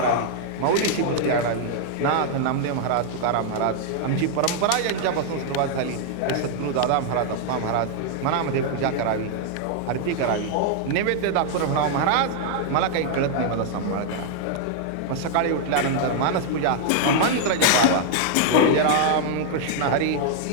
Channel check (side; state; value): both; different; correlation -0.01